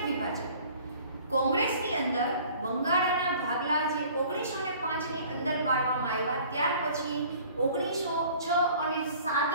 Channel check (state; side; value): inverted; both; correlation -0.50